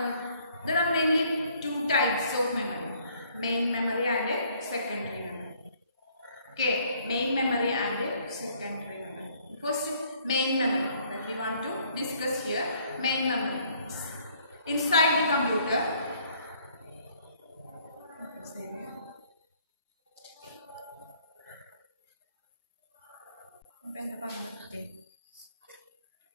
are mainly two types of memory: main memory and secondary memory. Okay, main memory and secondary memory. First, main memory that we want to discuss here. Main memory. Inside the computer,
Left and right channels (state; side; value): inverted; both; correlation -0.63